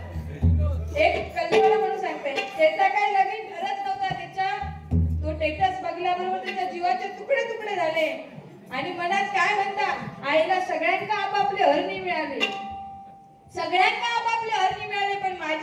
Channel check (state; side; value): identical; both; correlation 1.00